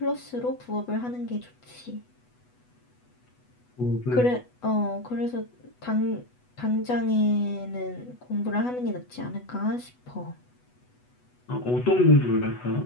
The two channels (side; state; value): right; late; 8.1 ms